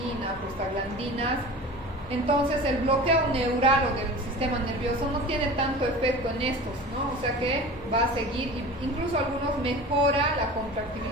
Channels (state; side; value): normal; both; correlation 0.37